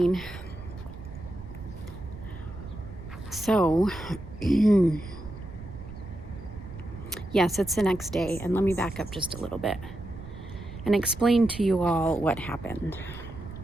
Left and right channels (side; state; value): right; noise; rumble, 13 dB below the sound